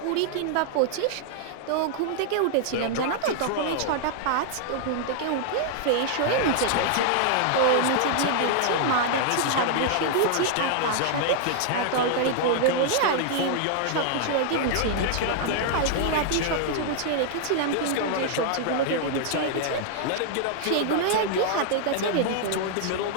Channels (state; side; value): different; both; correlation -0.01